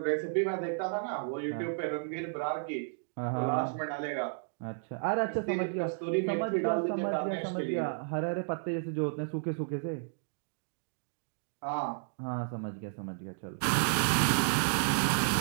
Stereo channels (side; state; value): left; silent; digital silence